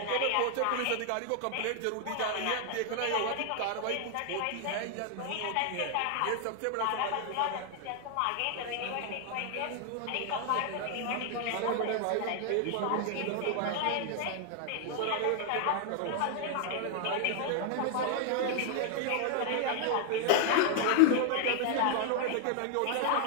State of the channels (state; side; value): different; both; correlation 0.00